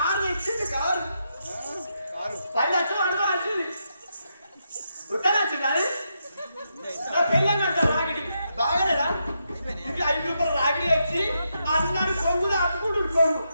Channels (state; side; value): inverted; both; correlation -0.82